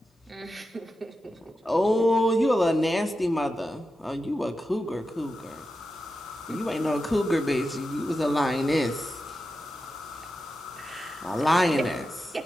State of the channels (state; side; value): normal; both; correlation 0.90